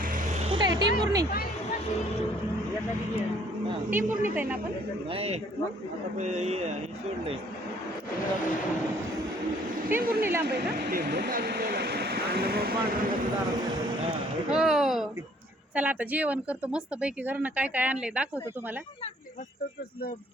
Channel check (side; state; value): both; normal; correlation 0.61